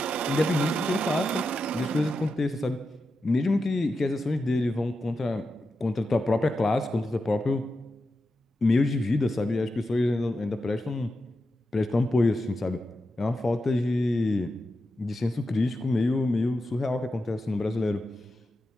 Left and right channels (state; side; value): normal; both; correlation 0.89